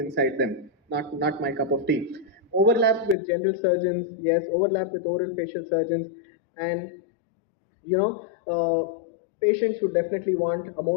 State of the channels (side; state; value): right; drops out; at 3.2 s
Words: them. Not my cup of tea. Overlap with general surgeons, yes. Overlap with oral facial surgeons, and patients would definitely want a